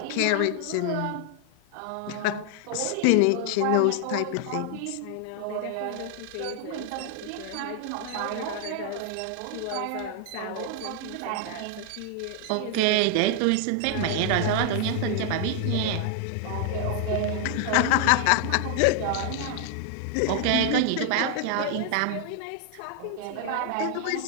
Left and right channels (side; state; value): both; different; correlation 0.00